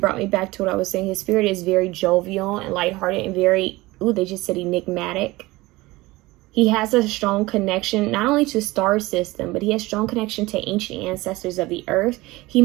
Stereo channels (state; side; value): quieter; left; 20.3 dB